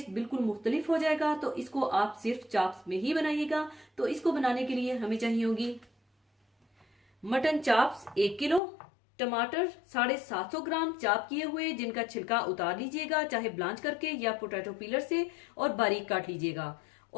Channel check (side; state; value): right; drops out; at 8.6 s